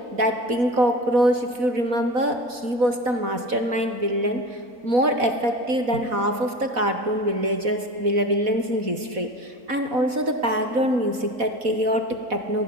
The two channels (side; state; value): left; late; 4.1 ms